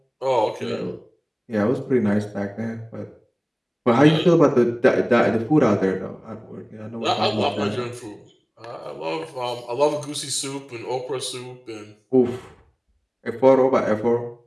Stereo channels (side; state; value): both; identical; correlation 1.00